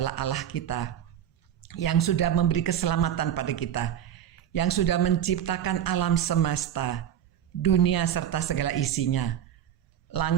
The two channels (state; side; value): quieter; left; 10.3 dB